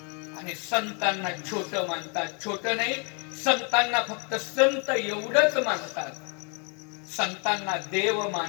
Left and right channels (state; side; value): quieter; right; 35.9 dB